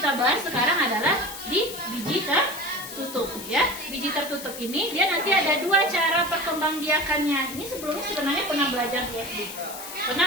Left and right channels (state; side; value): noise; left; hiss, 11 dB below the sound